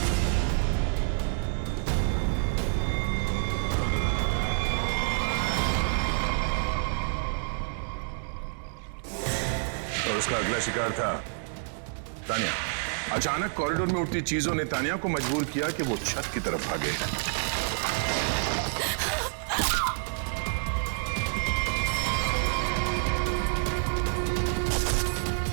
और उसका अगला शिकार था तानिया। अचानक कॉरिडोर में उठती चीजों ने तानिया को मजबूर किया कि वो छत की तरफ भागे।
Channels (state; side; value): silent; left; digital silence